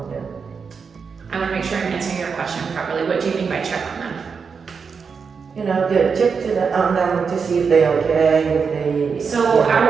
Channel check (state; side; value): quieter; left; 5.7 dB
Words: I want to make sure I'm answering your question properly. What do you mean by check on them? You know, check on them to see if they're okay, if they... So